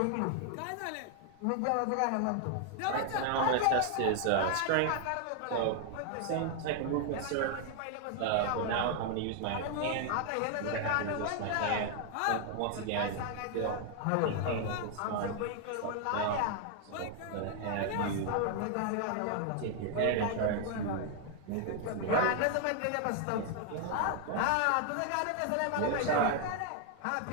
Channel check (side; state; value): both; different; correlation 0.00